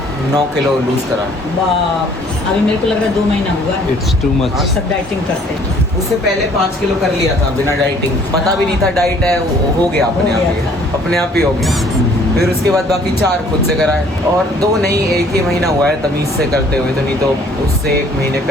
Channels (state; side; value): normal; both; correlation 0.58